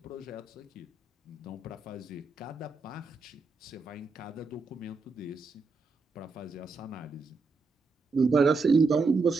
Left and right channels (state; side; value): quieter; left; 4.0 dB